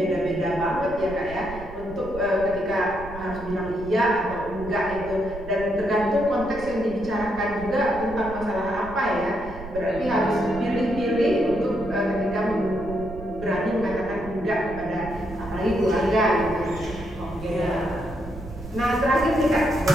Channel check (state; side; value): noise; right; rumble, 13 dB below the sound